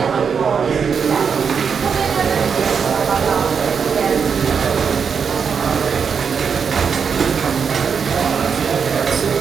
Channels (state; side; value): quieter; left; 6.4 dB